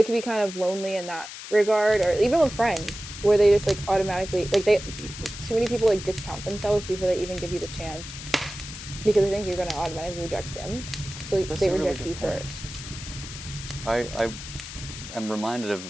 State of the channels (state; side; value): noise; left; hiss, 11 dB below the sound